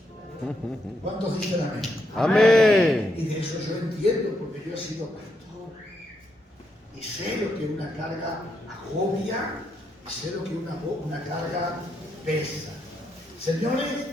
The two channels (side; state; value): both; normal; correlation 0.79